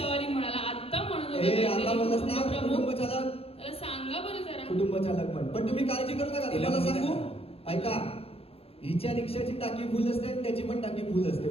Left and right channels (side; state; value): right; late; 0.28 ms